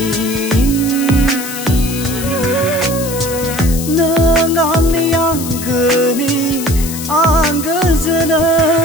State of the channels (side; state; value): left; noise; hiss, 9 dB below the sound